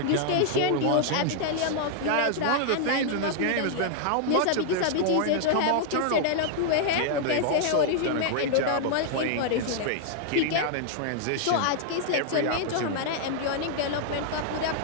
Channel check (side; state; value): both; different; correlation -0.01